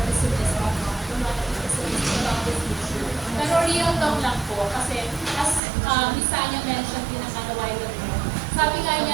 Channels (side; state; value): left; drops out; at 5.6 s